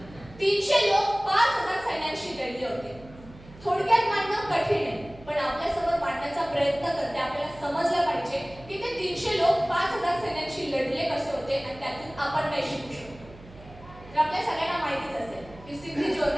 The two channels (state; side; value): noise; right; hum, 20 dB below the sound